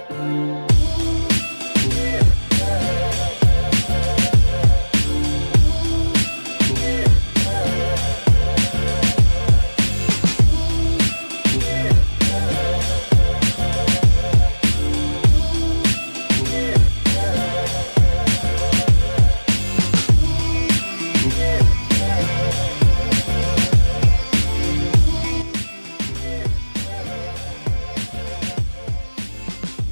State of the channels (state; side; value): inverted; both; correlation -1.00